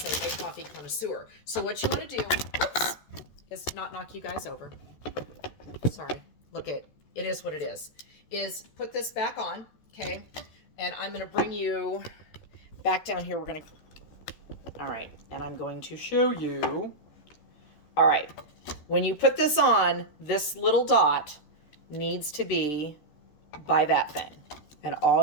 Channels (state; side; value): late; right; 13 ms